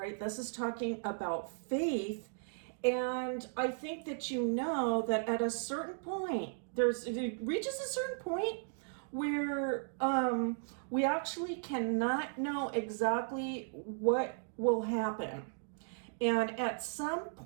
this is talking about faith, and I think that that at a certain point, it reaches a certain point where we actually cannot know exactly what will happen. And at some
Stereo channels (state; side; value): silent; left; digital silence